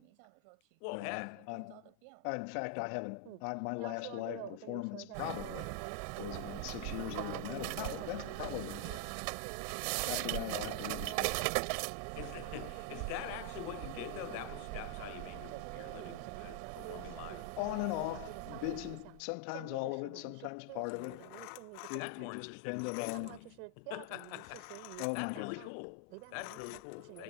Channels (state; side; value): different; both; correlation 0.00